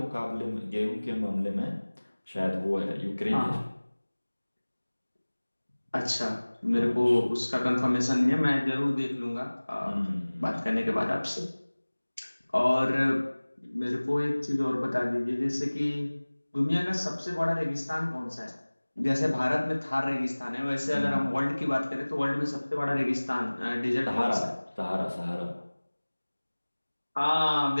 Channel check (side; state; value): both; inverted; correlation -1.00